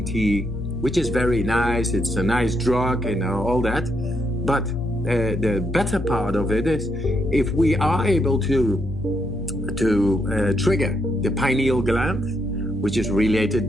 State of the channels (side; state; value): both; normal; correlation 0.77